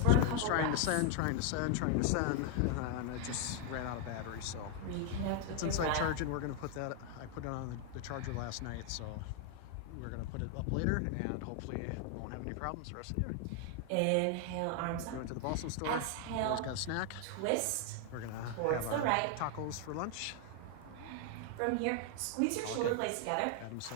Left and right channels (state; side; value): different; both; correlation 0.00